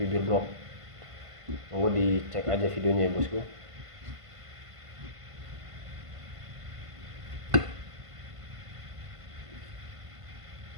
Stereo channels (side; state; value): left; late; 1.5 ms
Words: blok. Mau dicek aja videonya ya bosku.